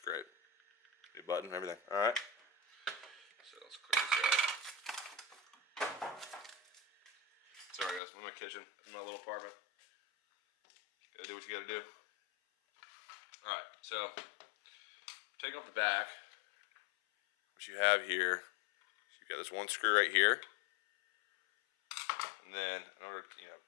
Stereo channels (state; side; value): drops out; right; at 8.0 s